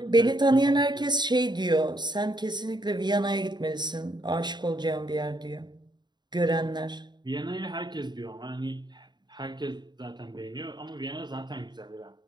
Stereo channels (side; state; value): left; late; 0.21 ms